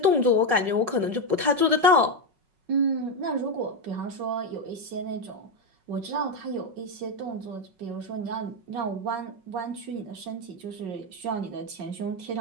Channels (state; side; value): late; left; 5.4 ms